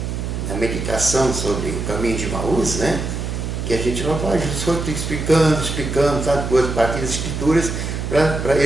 meditação sobre o caminho de Emaús, né? Que a gente não vai, Jesus foi explicando, sabe, coisas, a partir das Escrituras, para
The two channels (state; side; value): noise; right; hum, 4 dB below the sound